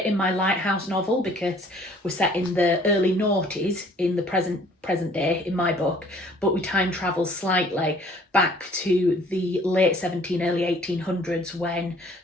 in my Lighthouse novel, because we're set in the early noughties in the present day in my book, but we time travel slightly back to the late 1700s, early 1800s, when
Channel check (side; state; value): both; normal; correlation 0.55